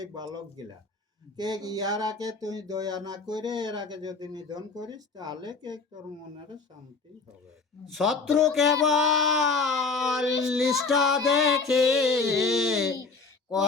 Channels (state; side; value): quieter; right; 4.3 dB